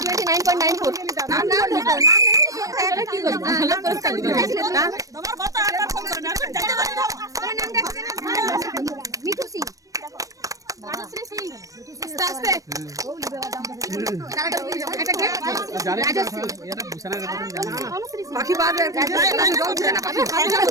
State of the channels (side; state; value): left; late; 0.16 ms